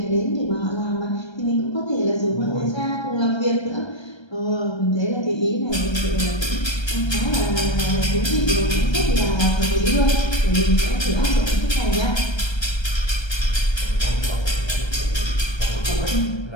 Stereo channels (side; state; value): right; late; 1.3 ms